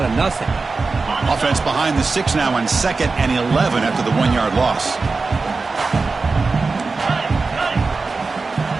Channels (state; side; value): quieter; left; 4.1 dB